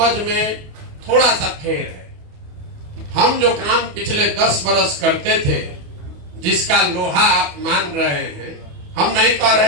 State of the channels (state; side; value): late; left; 28 ms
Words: में थोड़ा सा फेर है। हम जो काम पिछले 10 बरस करते थे, जिसका लोहा आप मान रहे हैं, हम नहीं कह